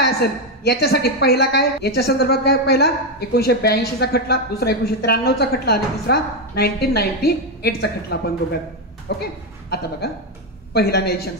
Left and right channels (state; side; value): normal; both; correlation 0.07